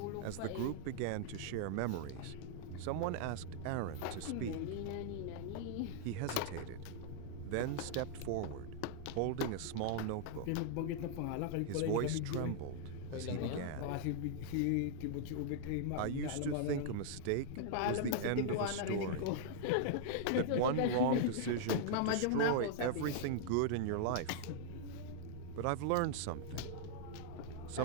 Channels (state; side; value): different; both; correlation -0.01